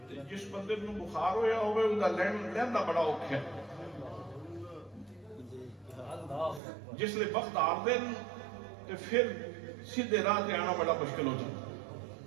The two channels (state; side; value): drops out; left; at 6.6 s